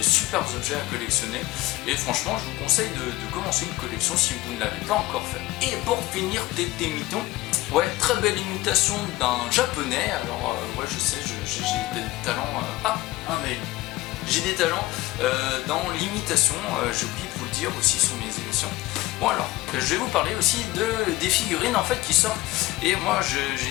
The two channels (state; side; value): quieter; right; 18.6 dB